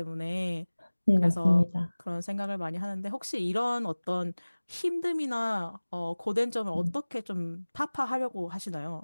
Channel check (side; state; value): both; inverted; correlation -1.00